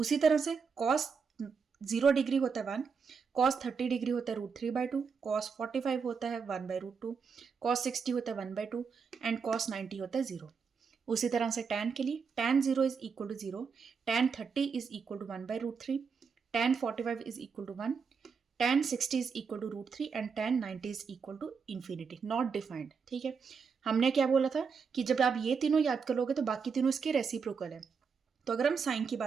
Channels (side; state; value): left; quieter; 5.7 dB